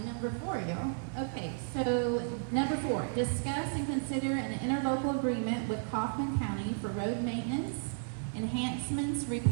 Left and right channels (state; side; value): silent; left; digital silence